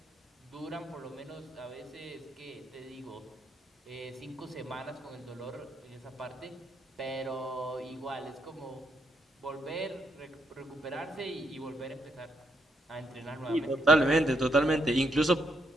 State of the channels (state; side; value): normal; both; correlation 0.77